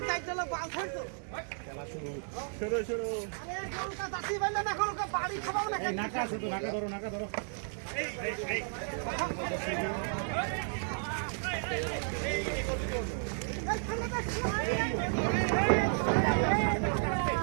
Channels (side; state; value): left; silent; 56 dB below the other